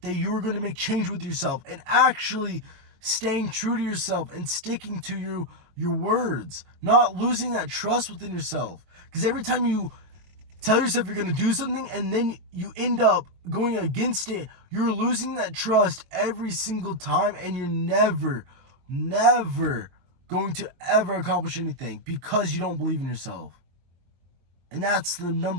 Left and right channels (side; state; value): left; late; 23 ms